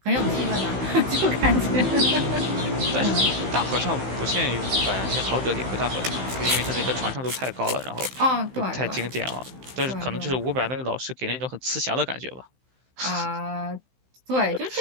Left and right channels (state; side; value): late; left; 15 ms